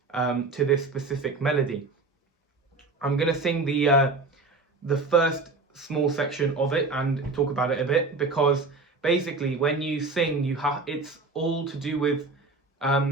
to this specific melody. I'm going to sing the first small section of it and talk about it a bit, because basically when you sing, it's all to do with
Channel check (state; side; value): quieter; left; 3.7 dB